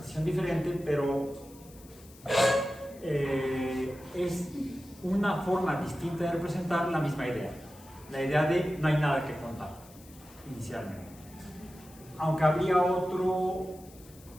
diferente, pero es una forma distinta de representar la misma idea. La idea de no hay nada que contar inicialmente. Aunque habría otro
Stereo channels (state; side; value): noise; left; hiss, 23 dB below the sound